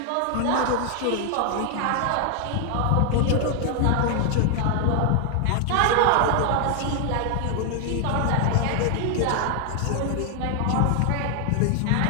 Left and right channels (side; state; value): both; different; correlation 0.00